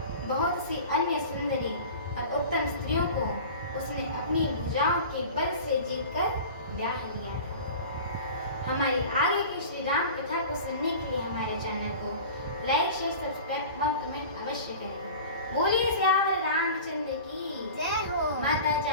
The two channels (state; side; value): inverted; both; correlation -0.38